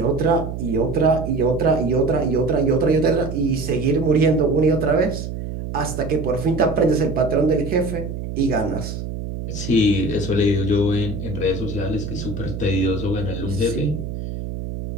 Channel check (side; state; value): right; noise; hum, 6 dB below the sound